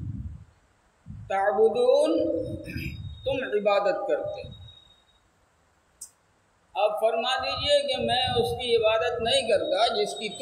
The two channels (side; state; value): both; identical; correlation 1.00